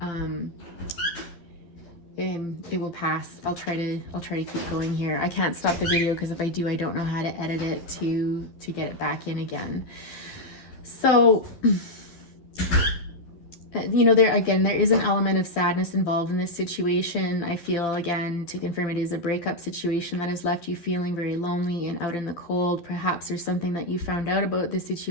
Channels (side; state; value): right; late; 12 ms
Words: it will pass. I'll try to keep going here. I can't stop the video because if I do, I don't know how to edit it to get it back in again. So, you know, there is an element of sadness involved in this situation. I feel, again, to confirm, it is a breakup situation that has left you feeling very lonely and out in the cold. Perhaps there's something that you found out about this